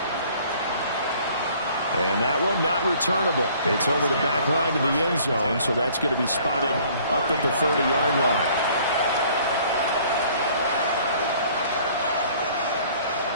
And that one not returnable. It's over the back line to the end zone, so that's going to be spotted up at the 30-yard line.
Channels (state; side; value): inverted; both; correlation -0.56